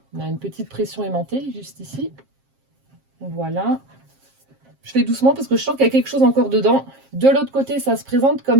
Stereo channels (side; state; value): left; late; 7.5 ms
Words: On a une petite pression aimantée juste ici. Voilà. Je fais doucement parce que je sens qu'il y a quelque chose encore dedans. De l'autre côté, ça se présente